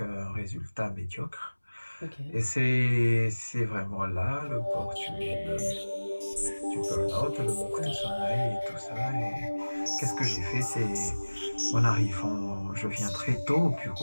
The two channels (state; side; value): inverted; both; correlation -1.00